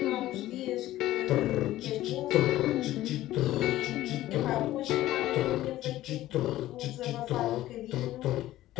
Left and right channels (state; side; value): quieter; right; 15.0 dB